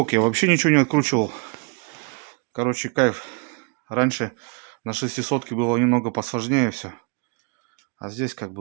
я вообще ничего не откручивал. Короче, кайф. Раньше на 600 было немного посложнее все. А здесь как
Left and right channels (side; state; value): left; quieter; 34.3 dB